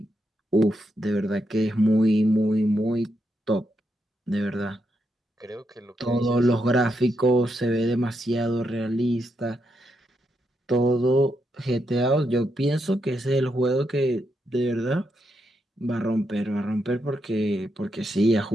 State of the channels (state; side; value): normal; both; correlation 0.82